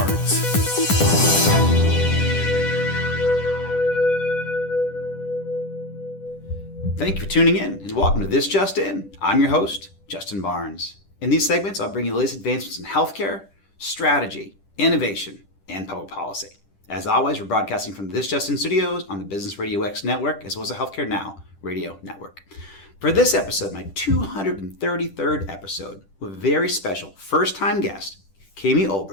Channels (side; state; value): right; late; 10 ms